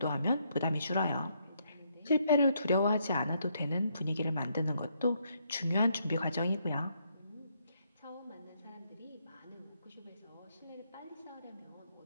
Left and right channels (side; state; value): both; inverted; correlation -0.74